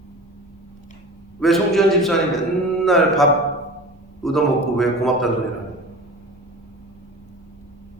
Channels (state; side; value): normal; both; correlation 0.36